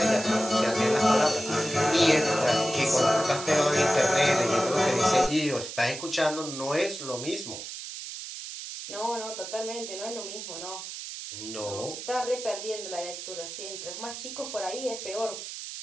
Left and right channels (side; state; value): right; noise; hiss, 9 dB below the sound